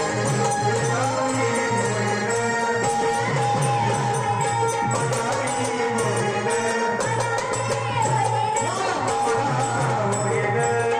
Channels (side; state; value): both; identical; correlation 1.00